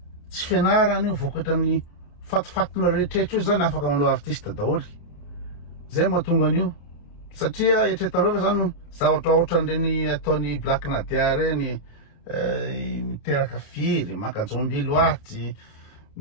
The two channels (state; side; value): late; right; 28 ms